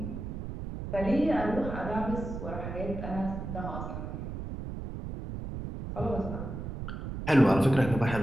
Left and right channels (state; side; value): noise; right; rumble, 6 dB below the sound